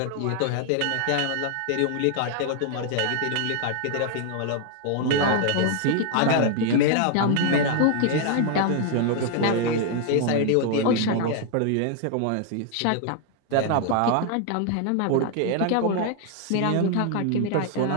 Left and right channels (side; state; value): both; different; correlation 0.00